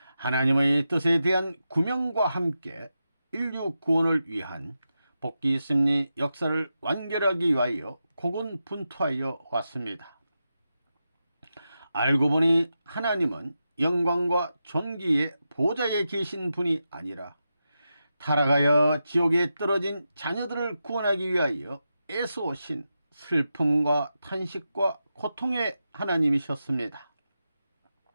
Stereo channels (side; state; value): both; inverted; correlation -0.89